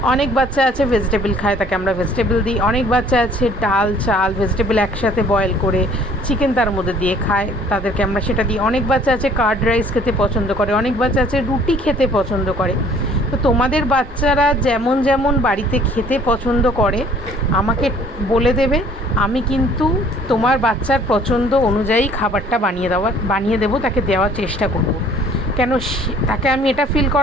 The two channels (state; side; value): normal; both; correlation 0.55